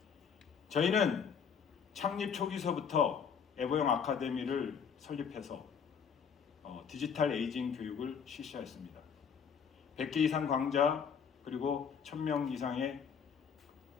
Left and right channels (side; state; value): right; quieter; 6.9 dB